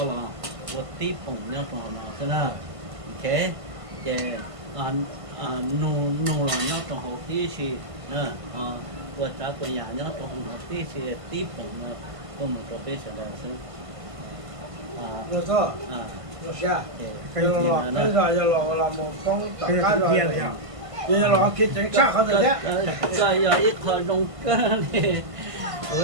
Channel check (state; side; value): late; left; 1.5 ms